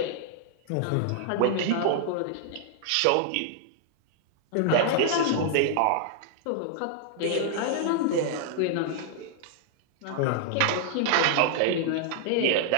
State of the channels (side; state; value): both; different; correlation -0.01